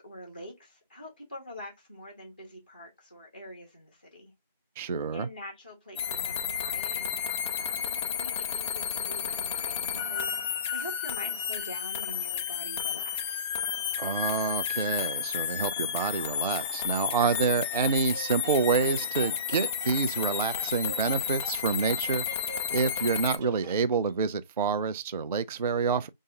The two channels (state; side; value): inverted; both; correlation -0.35